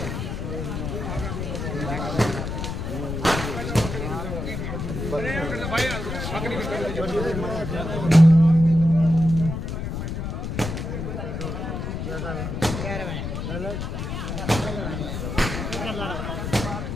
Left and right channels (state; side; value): noise; left; rumble, 4 dB below the sound